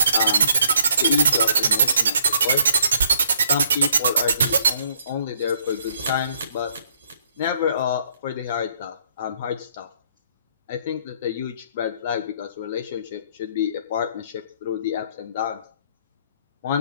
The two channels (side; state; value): both; inverted; correlation -0.66